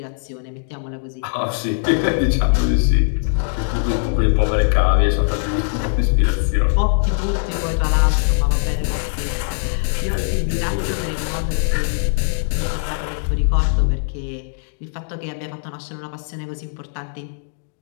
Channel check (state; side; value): silent; right; digital silence